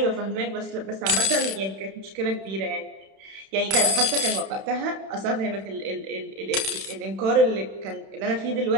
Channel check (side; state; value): left; late; 31 ms